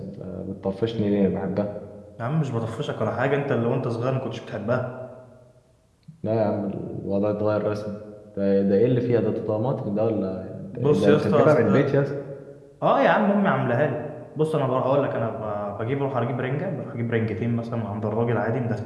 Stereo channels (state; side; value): identical; both; correlation 1.00